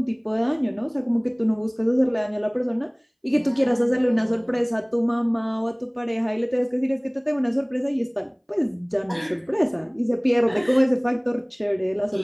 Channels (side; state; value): both; identical; correlation 1.00